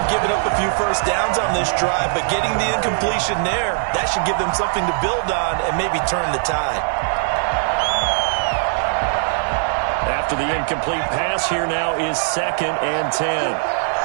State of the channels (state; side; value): silent; left; digital silence